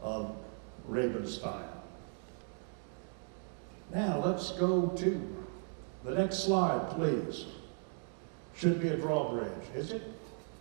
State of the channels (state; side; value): silent; left; 53 dB below the other